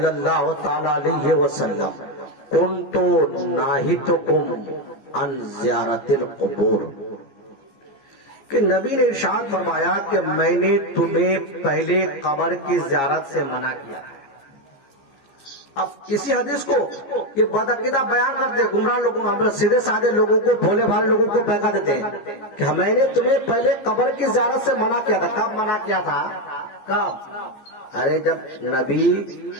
اللہ تعالیٰ علیہ وسلم کنت ناہیتکم عن زیارت القبور، کہ نبی نے ارشاد فرمایا کہ میں نے تمہیں پہلے قبر کی زیارت سے منع کیا ہے۔ اب اسی حدیث کو یہ بدعقیدہ بیان کرتے ہیں، گمراہ لوگوں، ہم سیدھے سادے لوگوں کو، بھولے بھالے لوگوں کو بہکا دیتے ہیں کہ میں نے تمہیں پہلے قبر کی زیارت سے منع کیا تھا۔ کب منع کیا تھا؟ کب؟ ارے جب نبی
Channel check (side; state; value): right; late; 15 ms